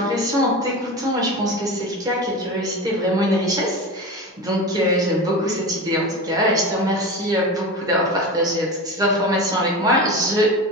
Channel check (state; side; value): normal; both; correlation 0.27